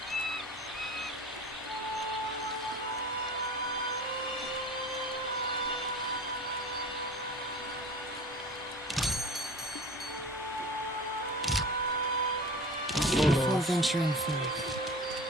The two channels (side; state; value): both; normal; correlation 0.38